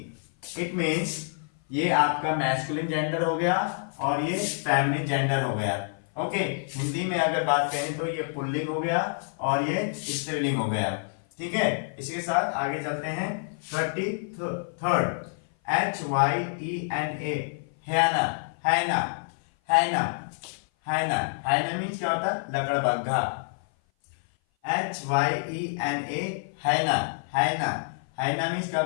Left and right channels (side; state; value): right; silent; 56 dB below the other